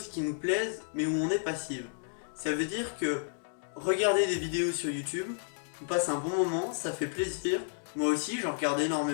qui nous plaisent mais où on est passif. Ça veut dire que regarder des vidéos sur YouTube, on passe un bon moment, ça fait plaisir. Moi aussi, j'en regarde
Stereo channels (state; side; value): silent; right; digital silence